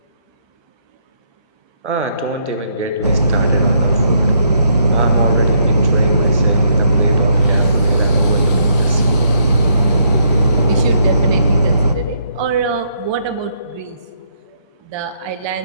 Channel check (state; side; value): inverted; both; correlation -0.71